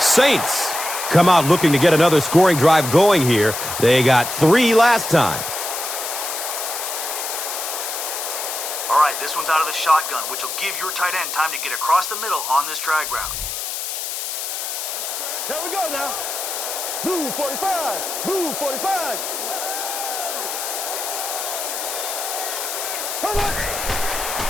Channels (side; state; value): left; noise; hiss, 4 dB below the sound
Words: come out looking to get another scoring drive going here. They got 3 last time. All right, this one's out of the shotgun, which will give your tight end time to get across the middle on this drag route. There we go now. Blue 45. Blue 45.